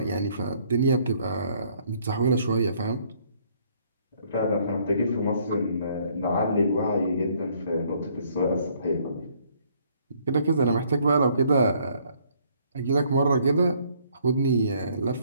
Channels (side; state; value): both; inverted; correlation -0.65